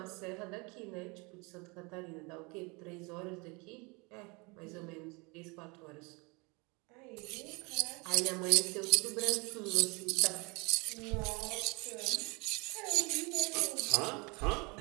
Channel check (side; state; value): left; quieter; 28.4 dB